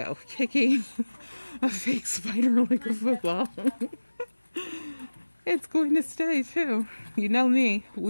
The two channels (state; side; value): inverted; both; correlation -1.00